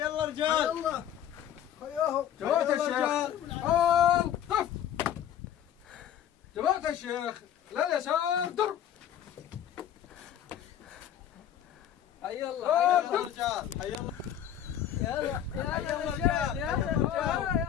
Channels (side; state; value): right; quieter; 10.3 dB